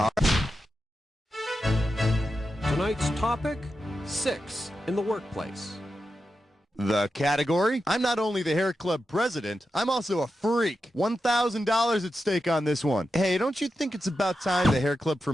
Tonight's topic, 6 in the workplace. The category? I'm not only the hair club president, I'm also a freak. $1,000 at stake on this one. Hey, don't you think it's about time the hair club for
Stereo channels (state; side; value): normal; both; correlation 0.89